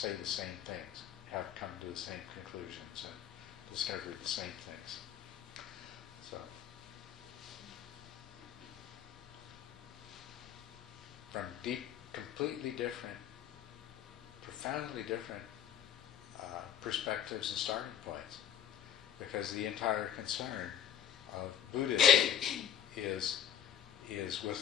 the same things, have come to the same conclusions and discovered the same things. So, from completely different, profoundly different perspectives and starting points, because the entire concern of Buddhism is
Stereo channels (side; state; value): right; quieter; 9.4 dB